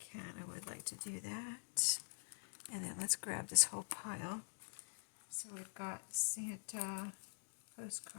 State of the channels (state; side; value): silent; right; digital silence